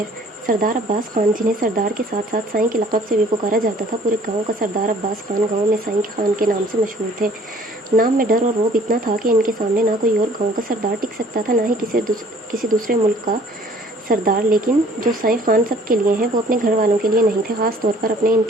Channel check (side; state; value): both; normal; correlation 0.54